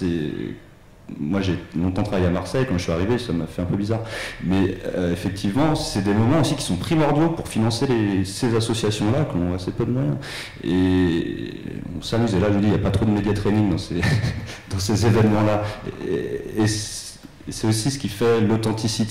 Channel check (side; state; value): both; identical; correlation 1.00